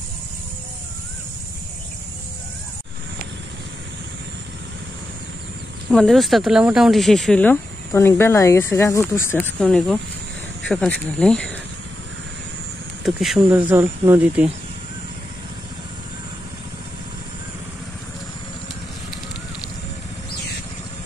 আমাদের উস্তা তোলা মোটামুটি শেষ হইলো, তো অনেক বেলা হয়ে গেছে, গা উঠছে আজকে অনেকও সকাল সকালে। তো কি সুন্দর জল নদীতে।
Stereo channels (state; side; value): normal; both; correlation 0.87